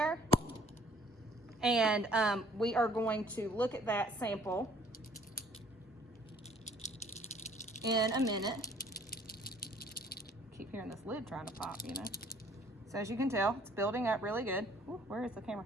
And we are going to look at that sample in a minute. Keep hearing this lid trying to pop, you know. So as you can tell, it's building up really good. Ooh, where is the camera?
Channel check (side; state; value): both; normal; correlation 0.58